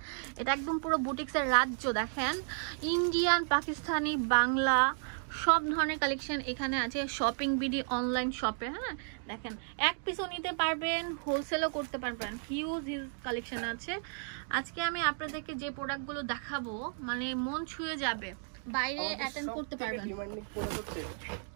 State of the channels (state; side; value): silent; left; 56 dB below the other